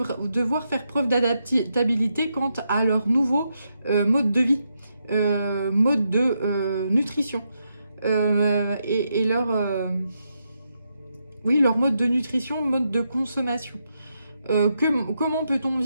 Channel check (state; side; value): inverted; both; correlation -0.82